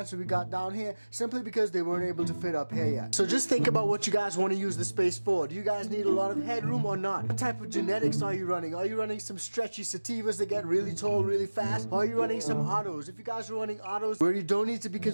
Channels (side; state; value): both; inverted; correlation -1.00